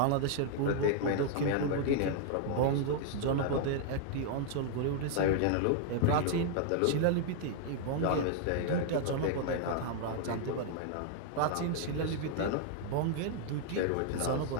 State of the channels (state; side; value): different; both; correlation 0.00